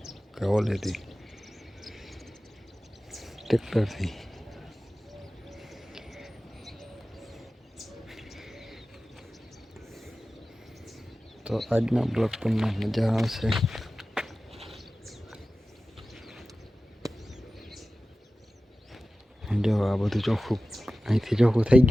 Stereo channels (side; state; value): both; normal; correlation 0.95